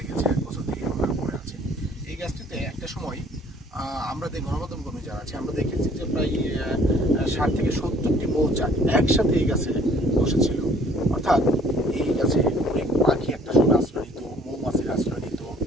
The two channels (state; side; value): normal; both; correlation 0.57